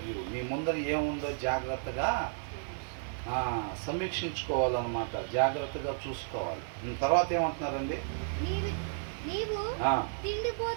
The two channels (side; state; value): left; silent; digital silence